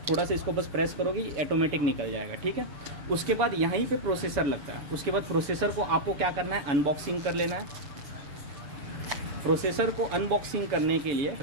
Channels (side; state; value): left; late; 7.0 ms